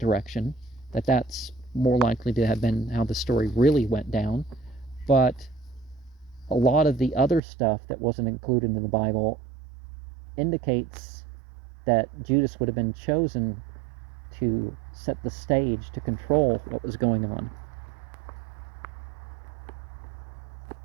that's more likely to have been how the story really went down. But a lot of the other stuff that wasn't included in the Bible indicates that Judas would have been chosen to set the stage to control what was going on.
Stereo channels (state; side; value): drops out; left; at 7.4 s